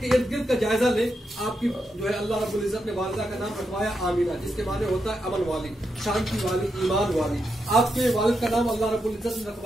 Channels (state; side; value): normal; both; correlation 0.84